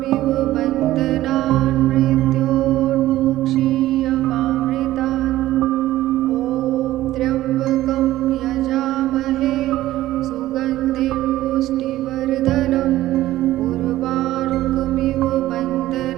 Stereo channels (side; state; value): left; quieter; 15.2 dB